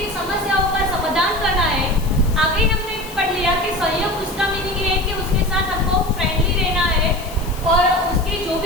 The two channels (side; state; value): left; noise; hiss, 16 dB below the sound